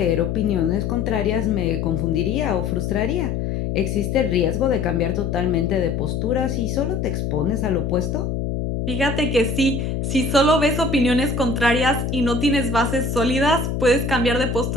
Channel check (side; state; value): left; noise; hum, 2 dB below the sound